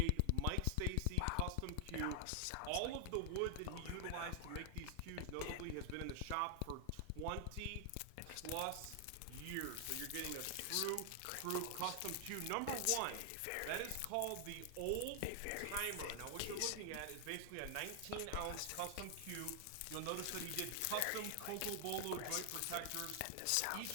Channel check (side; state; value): both; different; correlation 0.00